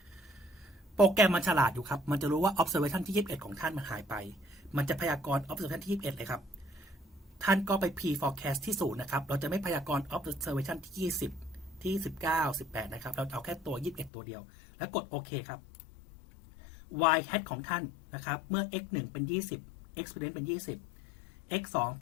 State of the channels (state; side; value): drops out; right; at 14.1 s